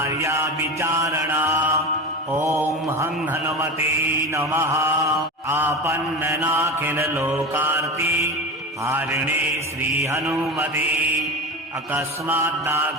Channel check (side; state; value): both; normal; correlation 0.26